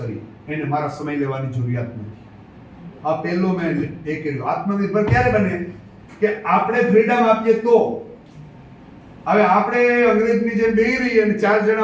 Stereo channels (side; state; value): both; identical; correlation 1.00